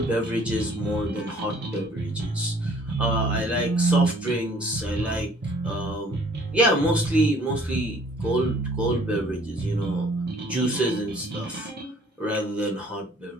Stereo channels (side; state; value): both; normal; correlation 0.57